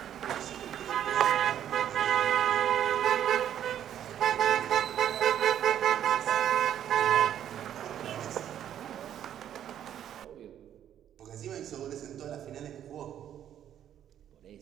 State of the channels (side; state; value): left; quieter; 10.4 dB